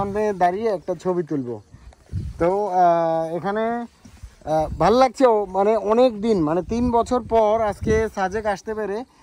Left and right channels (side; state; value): both; identical; correlation 1.00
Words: দাঁড়িয়ে একটা ছবি তুলব। তো এখানে ভালো লাগছে, মানে অনেক দিন, মানে 3 বছর পর আজকে সাজেক আসতে পেরে